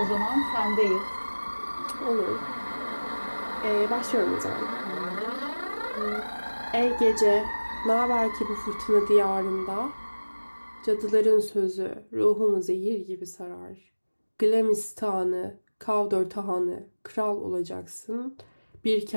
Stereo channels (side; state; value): both; inverted; correlation -1.00